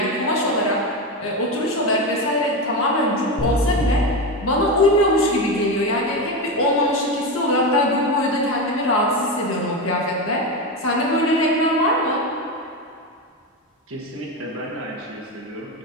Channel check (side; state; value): both; normal; correlation 0.16